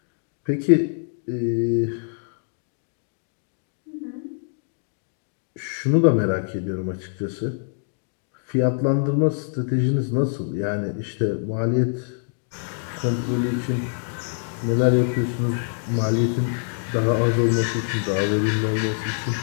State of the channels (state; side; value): silent; right; digital silence